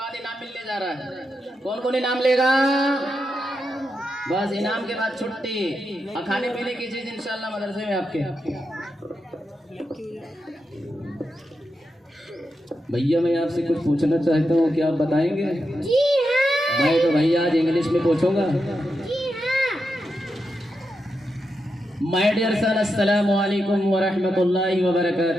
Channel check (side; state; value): both; normal; correlation 0.86